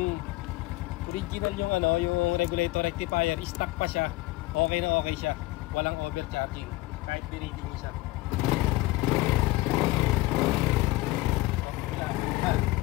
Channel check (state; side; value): quieter; right; 19.6 dB